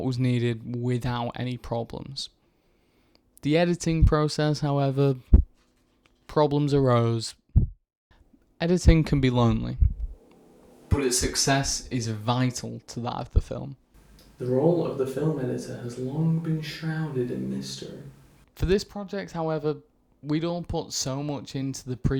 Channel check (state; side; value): identical; both; correlation 1.00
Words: was needed without any problems. The editing process, however, problems arose. Editing can be lonely, but its success is vital to that of the film. The role of the film editor has long been shrouded in mystery. For this project, however, we'd all put so much into the